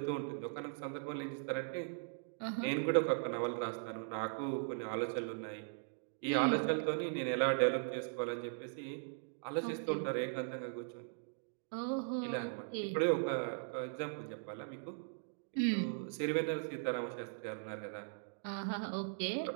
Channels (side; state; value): left; silent; digital silence